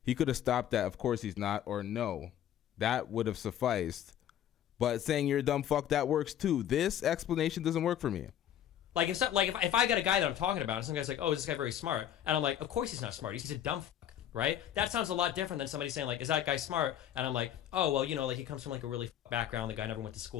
he could have stopped that. Of course he's not, or no, that would have sufficed. But saying you're a dumb fuck, that works too. This explanation doesn't work for me. Like if I got a guy that I'm talking about, and some guy's like, "Oh, is this guy very smart?" And I'm like, "Of course he's not smart. He's a dumb fuck." Right? That sounds a lot different than somebody saying like, "Is that guy smart?" And I'm like, "Oh, well, you know, like he comes from like a really background. The guy never went to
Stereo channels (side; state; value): right; quieter; 10.7 dB